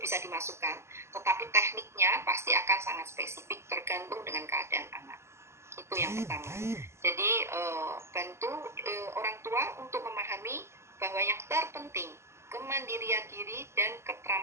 dimasukkan, tetapi tekniknya pasti akan sangat spesifik tergantung dengan keadaan anak. Itu yang pertama. Jadi bantu orang tua untuk memahami bahwa yang terpenting kemandirian diri dan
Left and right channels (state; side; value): late; left; 0.13 ms